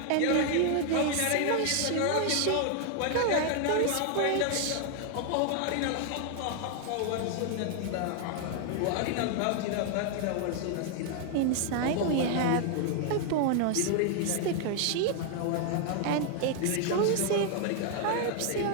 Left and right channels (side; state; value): both; different; correlation 0.00